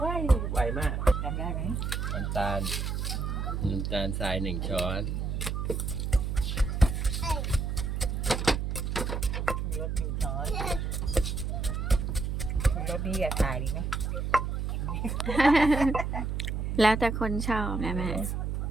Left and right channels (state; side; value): noise; right; hum, 1 dB below the sound